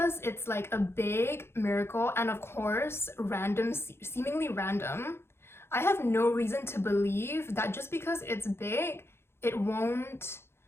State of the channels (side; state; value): right; late; 0.12 ms